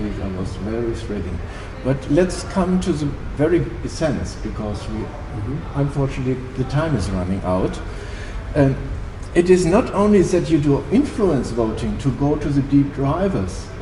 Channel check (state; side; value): identical; both; correlation 1.00